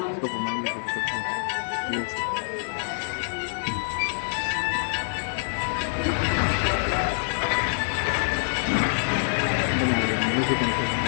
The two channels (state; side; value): silent; right; 61 dB below the other